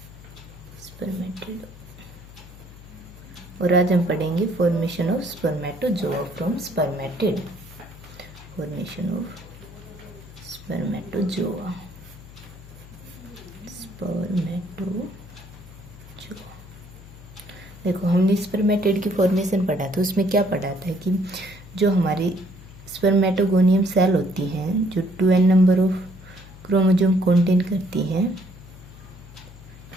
और आज हम पढ़ेंगे formation of spermatozoa from spermatid. Formation of spermatozoa. देखो, हमने स्पर्मेटिड की फॉर्मेशन पढ़ा था। उसमें क्या पढ़ा था कि जो हमारी स्पर्मेटोगोनियम सेल होती हैं, जो 2n number of chromosome contain करती हैं,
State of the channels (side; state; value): left; noise; hum, 19 dB below the sound